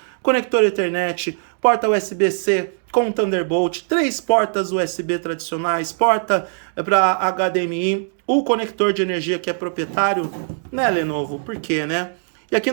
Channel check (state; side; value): silent; left; digital silence